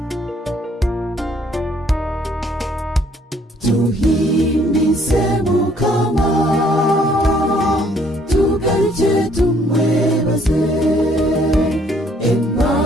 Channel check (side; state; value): both; normal; correlation 0.64